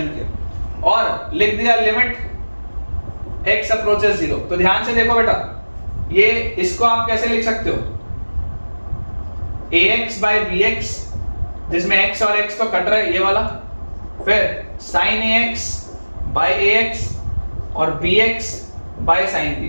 किया और लिख दिया लिमिट x अप्रोचेस 0। तो ध्यान से देखो बेटा, ये इसको आप कैसे लिख सकते हो, ax बाय bx, जिसमें x और x तो कट रहा है ये वाला, फिर sin ax बाय ax और bx बाय sin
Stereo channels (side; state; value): both; inverted; correlation -1.00